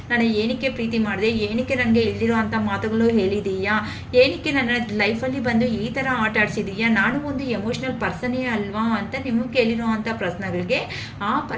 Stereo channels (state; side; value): identical; both; correlation 1.00